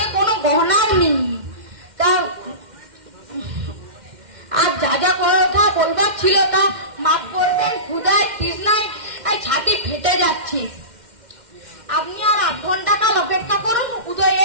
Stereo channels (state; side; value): late; left; 2.1 ms